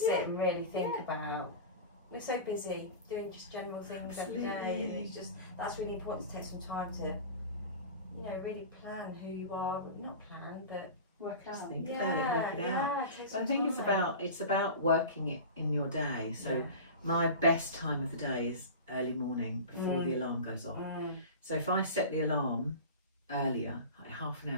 and really think about. We're so busy doing just general things every day. And it's just that's really important to take some time to, really plan who you are. Not plan, but Work out. Just think about it, work it out. Take But some I think time. it's about working it in your day. So my best time of the day is early morning before the alarm goes off. So if I set the alarm earlier, like half an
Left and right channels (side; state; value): both; inverted; correlation -0.32